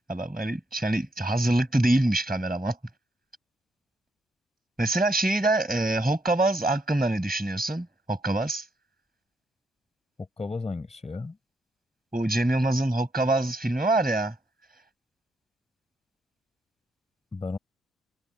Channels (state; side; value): normal; both; correlation 0.77